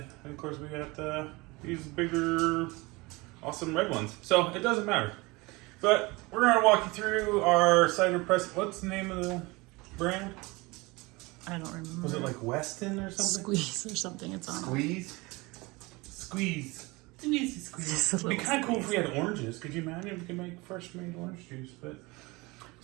of course we got these bigger, awesome red ones. So it doesn't matter. But we're going to walk you through our cider press. What's the name of the brand? I don't remember. Was it like Weston or something? Squeeze or something. It's on. Squeeze? Squeeze. It's an easy squeeze. It'd be kind of cool if we had oranges. Could you imagine if we could make fresh made orange juice? But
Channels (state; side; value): quieter; left; 24.0 dB